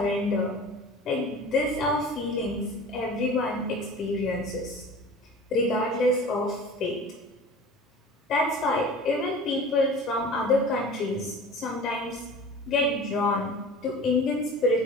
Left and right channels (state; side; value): normal; both; correlation 0.39